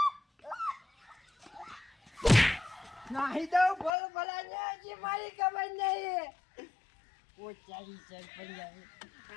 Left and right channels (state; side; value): drops out; right; at 3.9 s